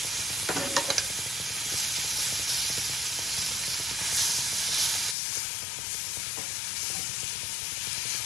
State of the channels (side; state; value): right; drops out; at 5.2 s